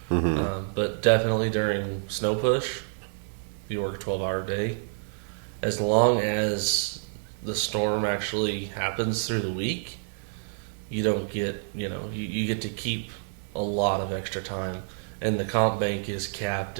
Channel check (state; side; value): silent; left; 59 dB below the other